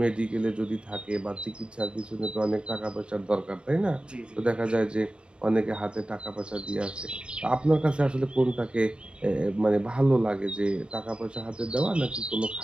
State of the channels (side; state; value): left; late; 0.053 ms